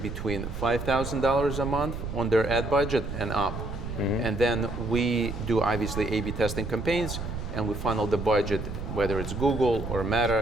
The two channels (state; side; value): noise; right; rumble, 7 dB below the sound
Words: $5,000 a month on their ad budget and up. Mm-hmm. And then we do obviously A/B testing campaigns, and we funnel the budget, whether it's Google or